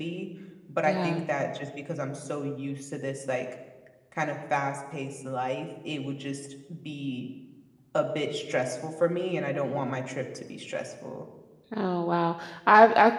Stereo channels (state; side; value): identical; both; correlation 1.00